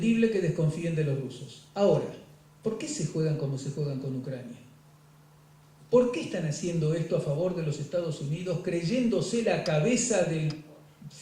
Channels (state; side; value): identical; both; correlation 1.00